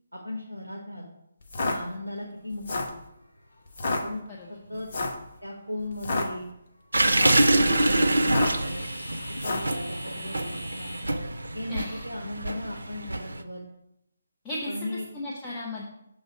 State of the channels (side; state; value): both; inverted; correlation -0.91